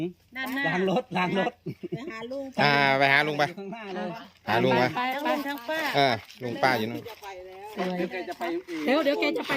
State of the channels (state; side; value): identical; both; correlation 1.00